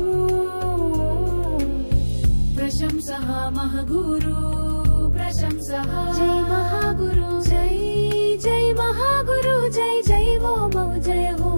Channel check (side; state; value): both; inverted; correlation -1.00